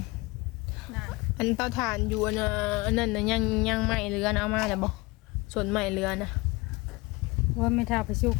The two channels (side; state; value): right; quieter; 23.9 dB